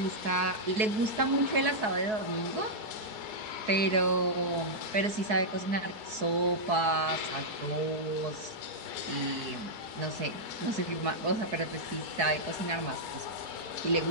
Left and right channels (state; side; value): late; left; 4.7 ms